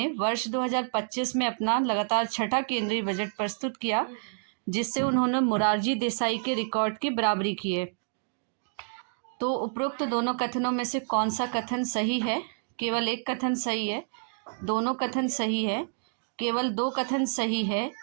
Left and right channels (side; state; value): left; silent; digital silence